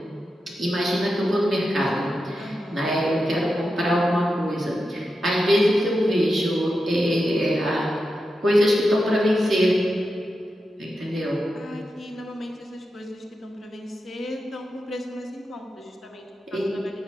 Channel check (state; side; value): normal; both; correlation 0.89